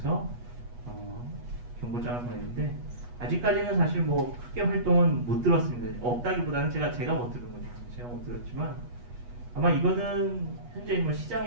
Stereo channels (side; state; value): left; late; 8.3 ms